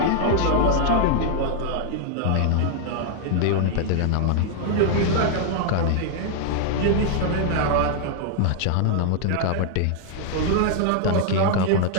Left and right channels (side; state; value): both; different; correlation -0.01